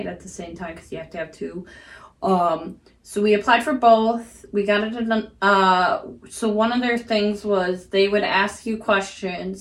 at the same time, because you have to have two. So we applied for both. We got it done. So one of their things was they would ask you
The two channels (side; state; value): both; identical; correlation 1.00